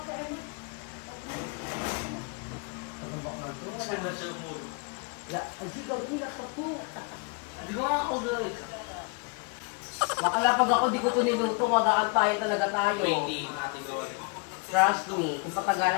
tayo. Pagkabak na ito. Saan na siya umulo? Yeah, ay, hindi ka po. Hindi ko nga ako guys. Makalapag ako, di ko ito niluto. Mag-aantayan talaga tayo. Waiting, natin gawa. Trust me, kung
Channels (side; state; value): right; quieter; 30.6 dB